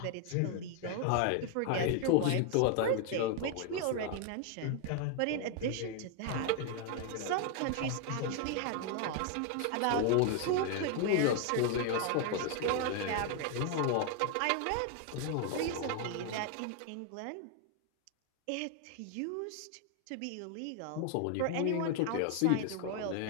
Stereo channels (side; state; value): both; different; correlation 0.00